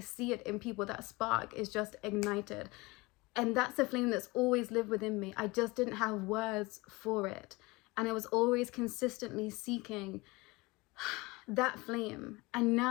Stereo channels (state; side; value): quieter; right; 23.6 dB